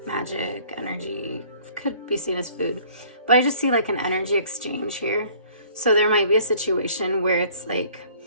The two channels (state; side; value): inverted; both; correlation -0.54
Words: magic energy, could be seen as food, but I just see like an energy exchange here. So there might be a situation where it's like